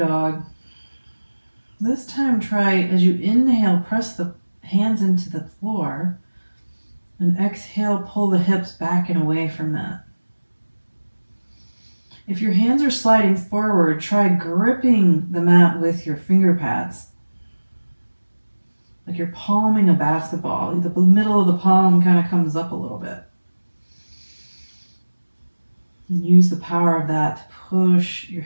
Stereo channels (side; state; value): both; inverted; correlation -1.00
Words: This time try, as you inhale, press the hands into the floor. And exhale, pull the hips back and away from that. If your hands are sliding forward, try gripping the mat with your finger pads. Like you're palming a basketball. The middle of the palm kind of comes up a little bit. And use the power of that to push your